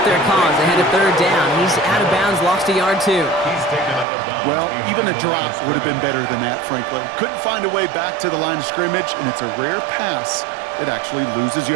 their cause. They had a 3rd down. He's out of bounds, lost a yard too. Well, even a drop would have been better than that, frankly. Couldn't find a way back to the line of scrimmage, and it's a rare pass that actually loses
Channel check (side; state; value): left; drops out; at 4.0 s